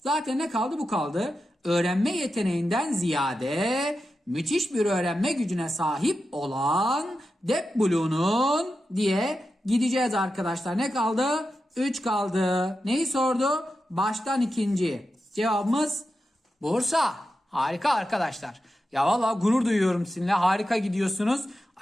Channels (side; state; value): both; normal; correlation 0.90